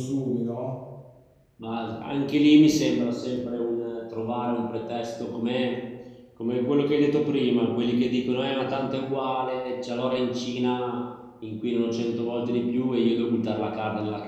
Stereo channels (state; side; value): identical; both; correlation 1.00